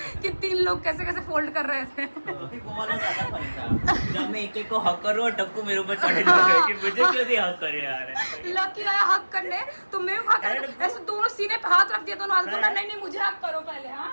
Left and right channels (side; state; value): both; inverted; correlation -1.00